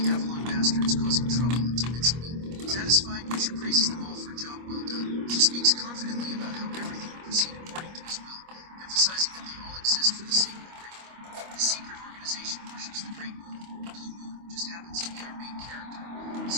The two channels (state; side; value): late; left; 25 ms